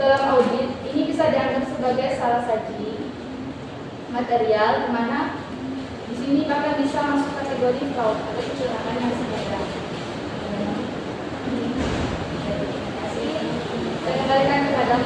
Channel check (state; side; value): identical; both; correlation 1.00